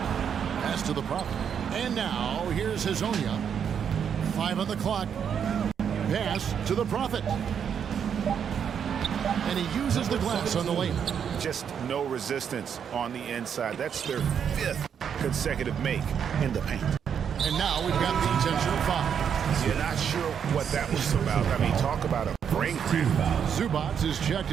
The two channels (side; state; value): left; quieter; 7.8 dB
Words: Pass to the Prophet. And now here's Hezonja. 5 on the clock. Pass to the Prophet. And he uses the glass on the lane. Just no resistance on the inside. That's their 5th consecutive make in the paint. And now we've got the intentional foul. You're not sure what that was about. I mean, talk about a brain cramp. Zubats is checked